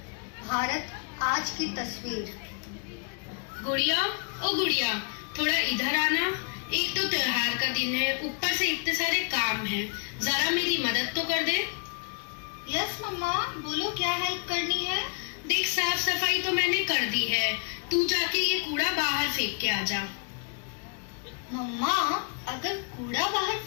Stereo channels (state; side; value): quieter; right; 37.2 dB